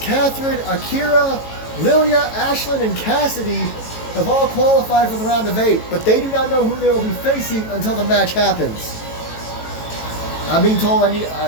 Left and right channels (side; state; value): right; late; 18 ms